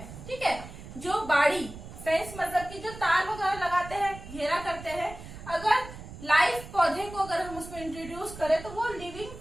ठीक है, जो बाड़ी फेंस मतलब कि जो तार वगैरह लगाते हैं, घेरा करते हैं, अगर लाइफ पौधे को अगर हम उसमें इंट्रोड्यूस करें तो वो लिविंग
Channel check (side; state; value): right; noise; rumble, 14 dB below the sound